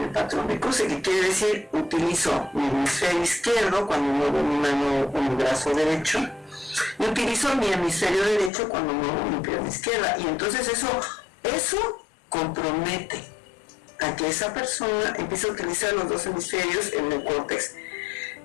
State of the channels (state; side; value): drops out; right; at 8.5 s